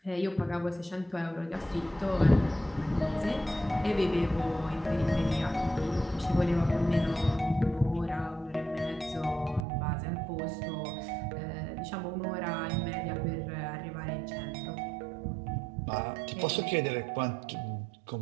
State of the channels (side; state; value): left; drops out; at 9.7 s